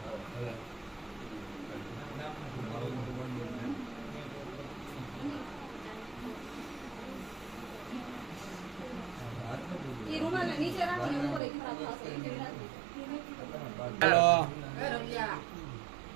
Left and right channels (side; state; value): left; drops out; at 11.4 s